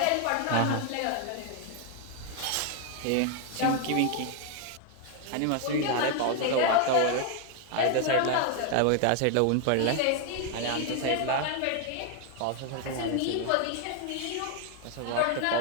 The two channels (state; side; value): different; both; correlation 0.01